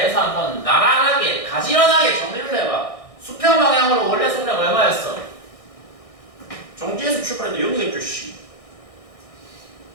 한번 나란하게 가지런하게 정리를 해봐. 수평 방향으로 원래 속력 얼마였어? 정지에서 출발했는데 0이겠죠 씨.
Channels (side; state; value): right; late; 1.6 ms